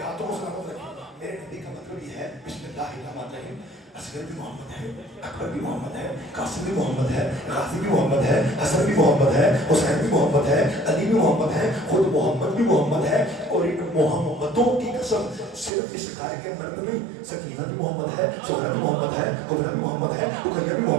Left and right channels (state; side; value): drops out; left; at 15.7 s